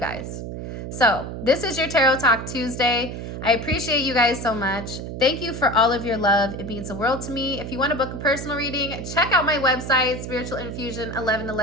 So this is your Tarot Talk Tuesday. I appreciate you guys so much. Thank you for all of your love. It means the world to me. If you want to book a personal reading, check out my website,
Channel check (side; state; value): right; noise; hum, 7 dB below the sound